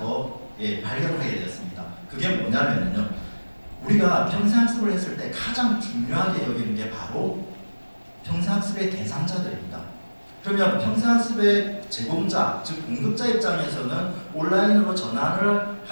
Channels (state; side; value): inverted; both; correlation -1.00